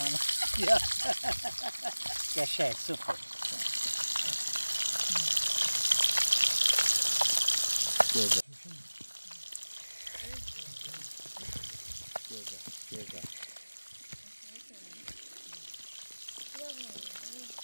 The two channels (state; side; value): inverted; both; correlation -1.00